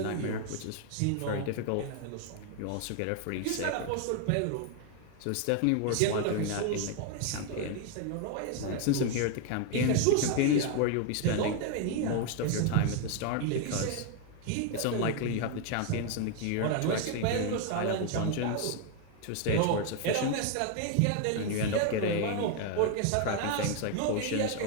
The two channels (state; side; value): different; both; correlation 0.00